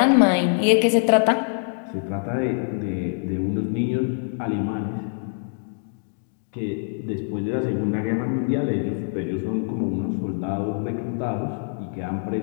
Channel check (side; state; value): right; silent; digital silence